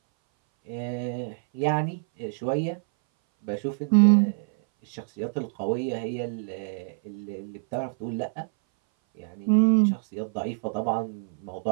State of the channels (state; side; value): silent; left; 59 dB below the other